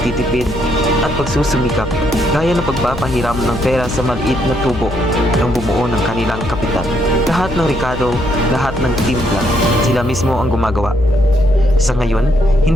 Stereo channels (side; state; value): left; noise; hum, 9 dB below the sound